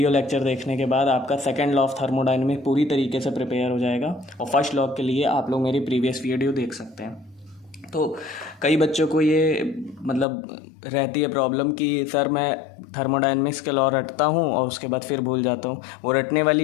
लेक्चर देखने के बाद आपका सेकंड लॉ ऑफ थर्मोडायनेमिक्स पूरी तरीके से प्रिपेयर हो जाएगा और फर्स्ट लॉ के लिए आप लोग मेरी प्रीवियस वीडियो देख सकते हैं। तो कई बच्चों को ये रहती है प्रॉब्लम कि सर मैं थर्मोडायनेमिक्स के लॉ रटता हूँ और उसके बाद फिर भूल जाता हूँ। वो रटने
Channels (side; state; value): right; drops out; at 10.2 s